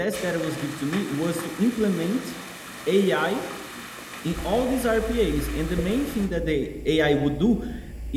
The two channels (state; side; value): identical; both; correlation 1.00